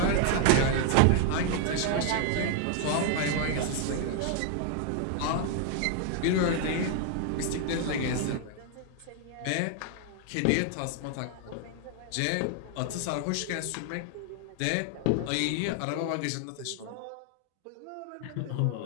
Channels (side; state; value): both; different; correlation 0.00